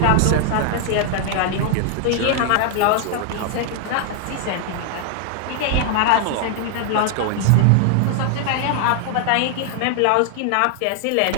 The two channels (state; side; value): different; both; correlation 0.00